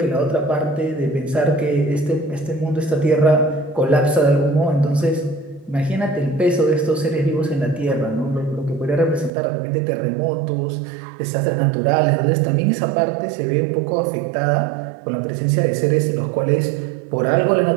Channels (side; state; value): left; drops out; at 9.3 s